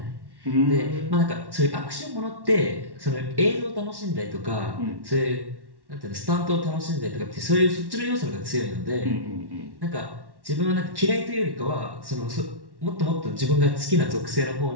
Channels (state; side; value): late; left; 1.1 ms